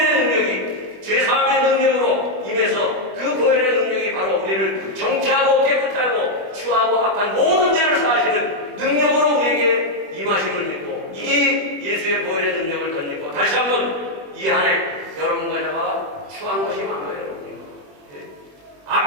능력이 죄사함의 능력으로 임해서 그 보혈의 능력이 바로 우리를 정케하고 깨끗하고 추하고 악한 모든 죄를 사하시는 능력으로 우리에게 임하심을 믿고, 이 예수의 보혈의 능력을 덧입고 다시 한번 이 한 해 여러분과 제가 추한 것이 많아요, 여러분요.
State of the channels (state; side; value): late; left; 21 ms